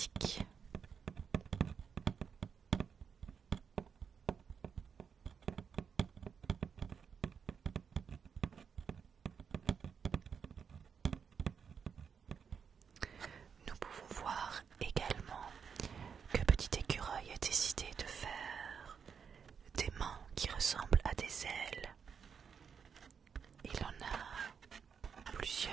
Nous pouvons voir également que Petit Écureuil a décidé de faire des mains qui ressemblent à des ailes. Il en a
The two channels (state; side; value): quieter; left; 6.7 dB